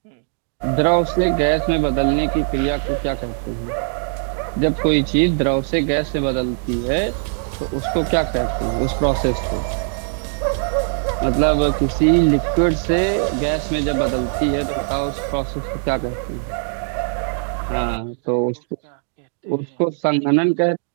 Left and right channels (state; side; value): silent; left; digital silence